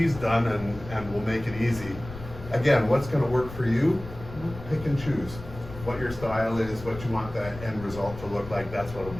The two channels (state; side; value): noise; left; rumble, 13 dB below the sound